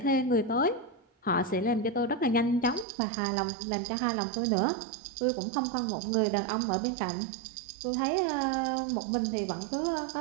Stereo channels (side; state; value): left; drops out; at 2.9 s